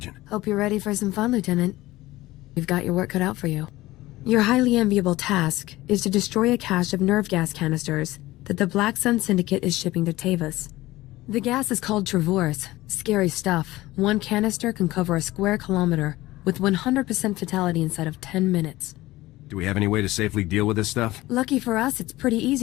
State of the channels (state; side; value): quieter; right; 17.9 dB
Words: Hope you're ready for some fun, Lieutenant. We've got your work cut out for you. Your highly enviable task is to destroy a cache of nerve gas canisters that the Black Sun Syndicate is shipping to Tavus. The gas is called Travorus. Scary stuff. One canister can cover a square kilometer with 100% fatality inside of 10 minutes. Do we have any way to safely deal with this stuff? Lucky for us, it's pretty